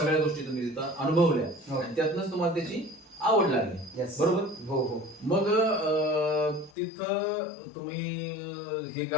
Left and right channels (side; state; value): right; drops out; at 6.7 s